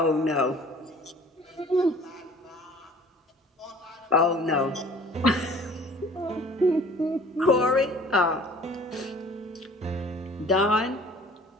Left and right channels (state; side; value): normal; both; correlation 0.50